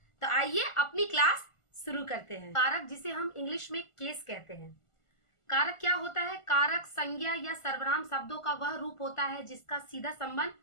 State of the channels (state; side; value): late; right; 1.5 ms